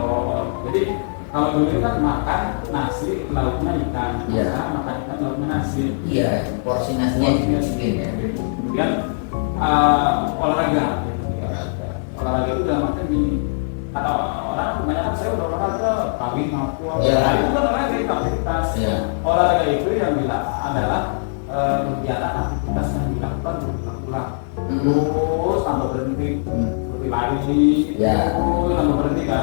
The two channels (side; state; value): right; silent; digital silence